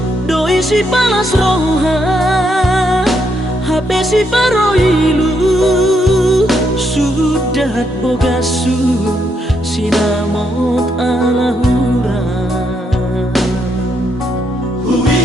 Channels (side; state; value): both; normal; correlation 0.77